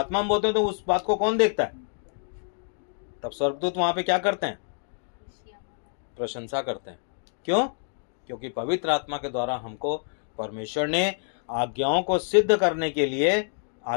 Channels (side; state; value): right; silent; digital silence